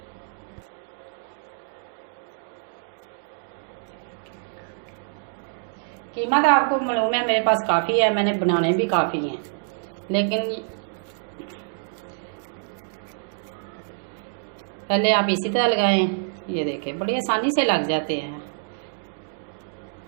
कीमा तो आपको मालूम है मेरे पास काफ़ी है, मैंने बनाने भी काफ़ी हैं, लेकिन पहले आप इसी तरह लगाएं। ये देखें बड़ी आसानी से लग जाते हैं।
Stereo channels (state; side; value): silent; left; digital silence